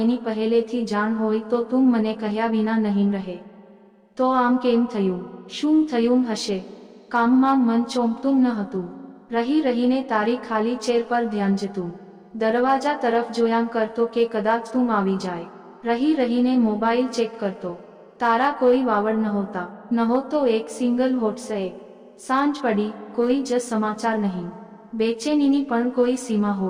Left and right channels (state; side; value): identical; both; correlation 1.00